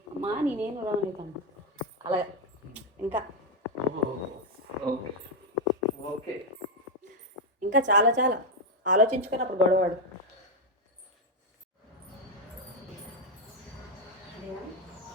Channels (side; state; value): both; normal; correlation 0.04